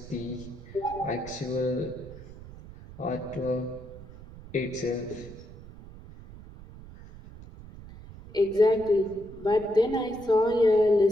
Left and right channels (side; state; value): right; noise; rumble, 17 dB below the sound